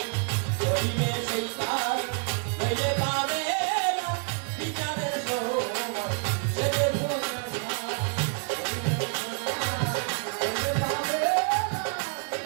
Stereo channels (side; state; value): left; quieter; 38.6 dB